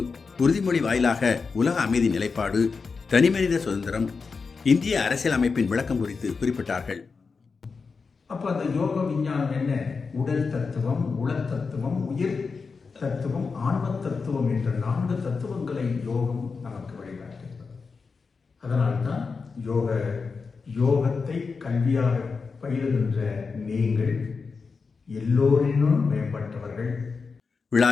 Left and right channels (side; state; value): right; quieter; 4.8 dB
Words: உறுதிமொழி வாயிலாக உலக அமைதி நிலைப்பாடு, தனிமனித சுதந்திரம், இந்திய அரசியல் அமைப்பின் விளக்கம் குறித்து குறிப்பிட்டார்கள். அப்ப அந்த யோக விஞ்ஞானம் என்ன? உடல் தத்துவம், உள தத்துவம், உயிர் தத்துவம், ஆன்ம தத்துவம் என்ற 4 தத்துவங்களை யோகம் நமக்கு வழிகாட்டுகிறது. அதனால்தான் யோகத்தை கல்வியாக பயிலுகின்ற நீங்கள் எல்லோரினும் மேம்பட்டவர்கள்.